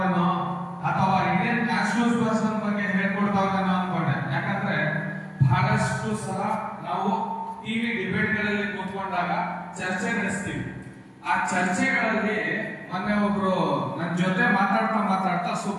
ಅಥವಾ ಇಂಡಿಯನ್ ನ್ಯಾಷನಲ್ ಪರ್ಸನ್ ಬಗ್ಗೆ ಹೇಳ್ಕೊಡ್ತಾವ್ರೇನೋ ಅನ್ಕೊಂಡೆ. ಯಾಕಂದ್ರೆ ಬಹಳಷ್ಟು ಸಲ ನಾವು ಟಿವಿ ಡಿಬೇಟ್ಗಳಲ್ಲಿ ಕೂತ್ಕೊಂಡಾಗ ಚರ್ಚೆ ನಡೆಸ್ತೀವಿ. ಆ ಚರ್ಚೆಗಳಲ್ಲಿ ಮೊನ್ನೆ ಒಬ್ರು ನನ್ನ ಜೊತೆ ಮಾತಾಡ್ತಾ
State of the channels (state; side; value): identical; both; correlation 1.00